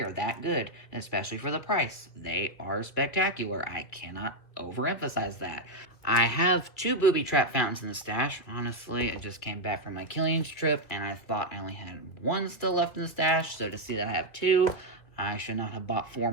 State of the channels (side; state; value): right; late; 2.2 ms